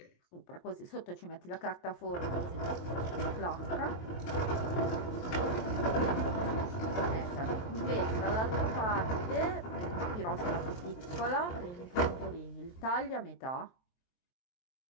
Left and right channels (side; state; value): right; late; 23 ms